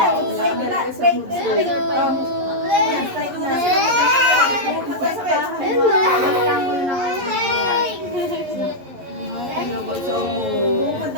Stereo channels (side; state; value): left; late; 11 ms